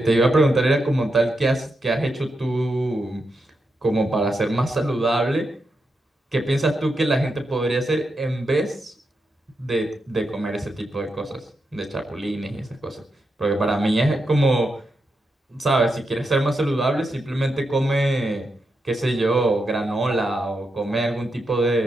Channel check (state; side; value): normal; both; correlation 0.85